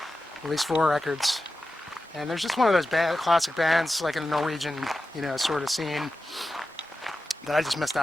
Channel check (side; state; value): both; normal; correlation 0.92